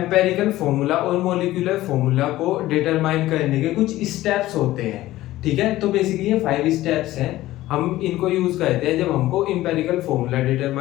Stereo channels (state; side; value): quieter; right; 16.0 dB